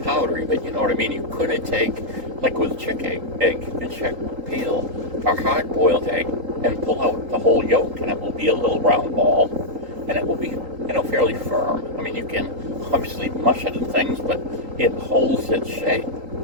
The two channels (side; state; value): left; late; 3.8 ms